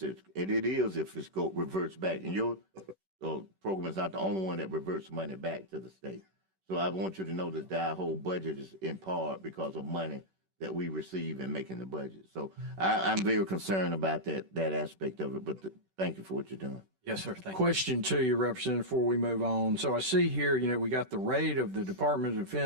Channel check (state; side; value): late; left; 10 ms